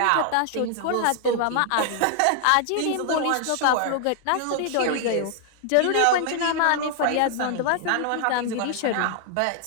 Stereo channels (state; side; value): different; both; correlation 0.00